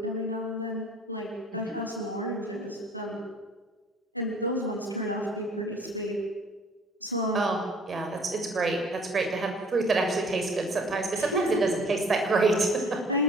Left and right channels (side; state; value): both; normal; correlation 0.53